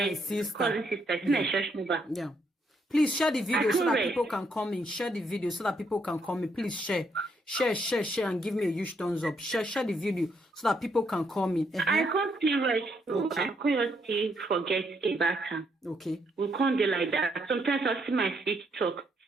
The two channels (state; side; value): normal; both; correlation 0.74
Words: cousin sister, it's a church member. Yeah. Please share the video so that people can come in. Share the video so that people can come in. Please share. Share, and give me a huge thumbs up. Share the video so that people can come in. I can't see right. Okay. I can't still forget about her. Okay. We can't do like that. Sometimes I see my feet talk.